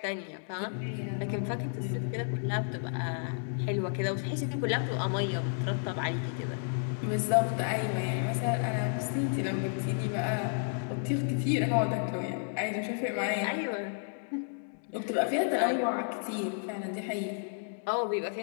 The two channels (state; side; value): silent; right; digital silence